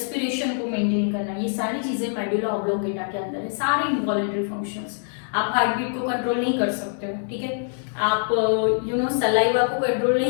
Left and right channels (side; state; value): right; silent; 62 dB below the other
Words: को मेंटेन करना, ये सारी चीजें मेडुला ऑब्लोंगेटा के अंदर है, सारे इनवॉलेंटरी फंक्शंस। आप हार्ट बीट को कंट्रोल नहीं कर सकते हो, ठीक है, आप सलाइवा को कंट्रोल